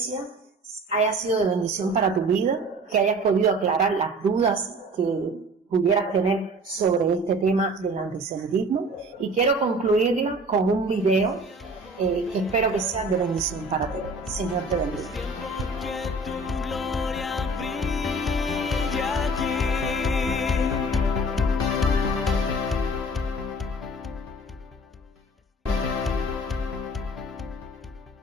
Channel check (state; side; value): normal; both; correlation 0.45